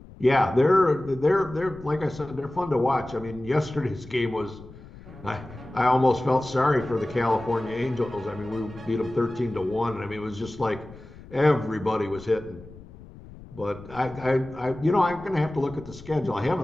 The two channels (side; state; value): left; noise; rumble, 18 dB below the sound